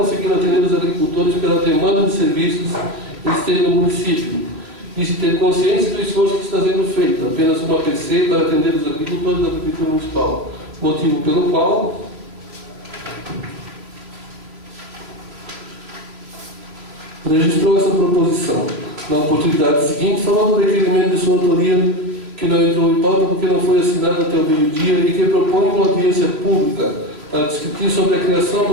atender os agricultores pela demanda de serviços existentes no município e se ter consciência do esforço que está sendo feito, apenas uma PC para atender os agricultores da Prefeitura Municipal, motivo pelo qual registrou essa proposição. Na oportunidade seguinte, falou do requerimento de sua autoria que não entrou em pauta porque não foi assinado até o meio-dia e que propõe uma audiência pública para discutir sobre a criação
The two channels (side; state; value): left; late; 3.1 ms